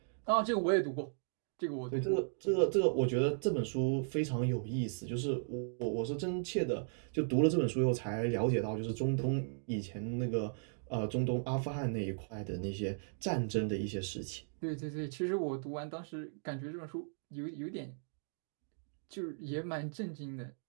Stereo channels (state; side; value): silent; left; digital silence